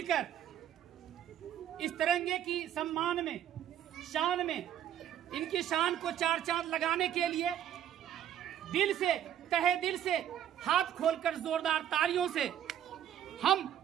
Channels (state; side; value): quieter; left; 10.6 dB